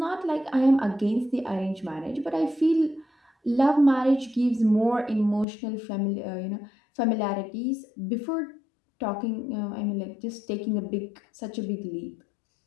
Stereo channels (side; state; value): right; drops out; at 5.5 s